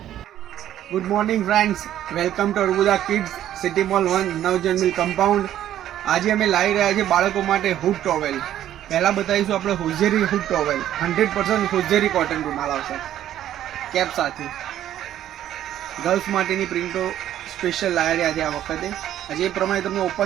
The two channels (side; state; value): left; quieter; 11.8 dB